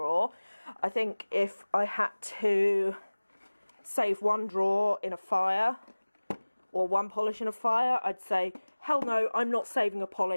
I think if I had to save one drawer in a fire or one polish in a fire, I'd say, hell no, I'm not saving a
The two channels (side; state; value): both; inverted; correlation -1.00